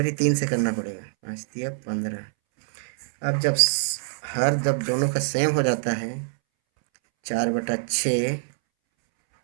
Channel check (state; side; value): silent; left; 62 dB below the other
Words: भी 3 से करना पड़ेगा, 5 दिया 15। अब जब दोनों का सेम हो जाता है, 4/6